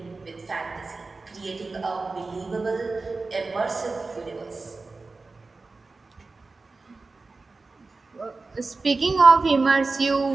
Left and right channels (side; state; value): left; quieter; 3.8 dB